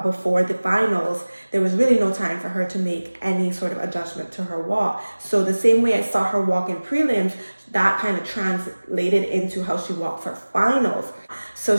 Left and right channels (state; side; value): inverted; both; correlation -1.00